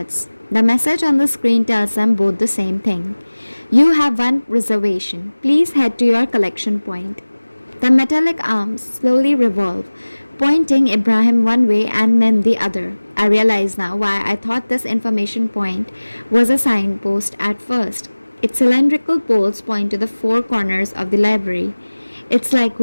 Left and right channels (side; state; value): both; inverted; correlation -1.00